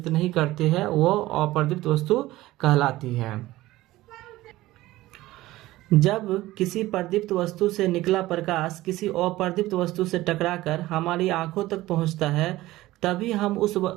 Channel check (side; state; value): left; quieter; 17.2 dB